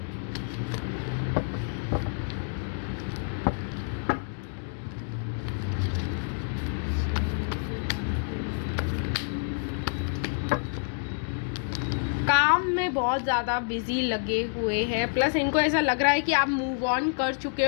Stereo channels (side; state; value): right; silent; digital silence